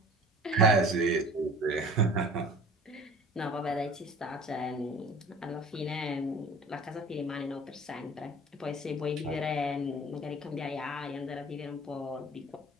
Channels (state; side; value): normal; both; correlation 0.44